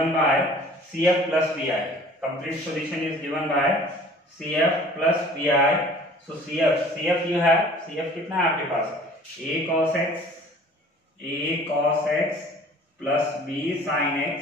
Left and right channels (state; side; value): normal; both; correlation 0.49